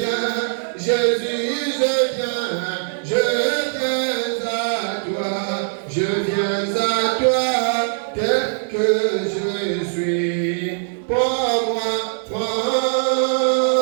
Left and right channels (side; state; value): left; silent; 65 dB below the other